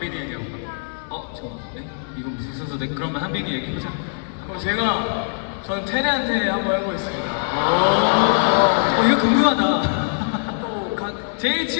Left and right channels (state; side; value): silent; right; digital silence